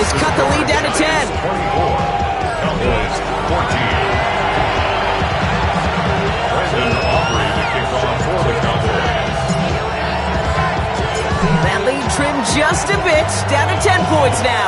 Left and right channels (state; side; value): identical; both; correlation 1.00